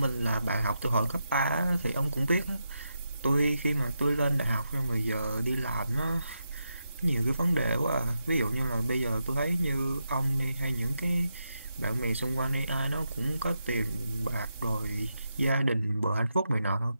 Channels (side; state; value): both; inverted; correlation -0.86